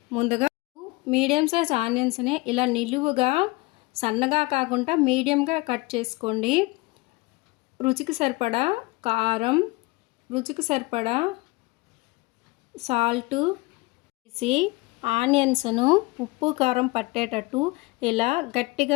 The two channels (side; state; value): right; quieter; 23.6 dB